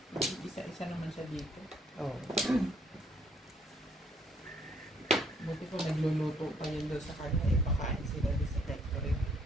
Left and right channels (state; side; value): normal; both; correlation 0.66